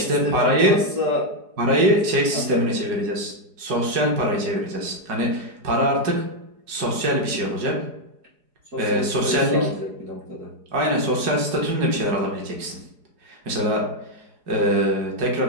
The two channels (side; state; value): left; late; 4.8 ms